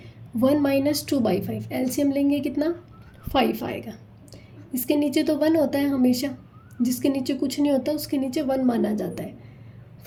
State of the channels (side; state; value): both; identical; correlation 1.00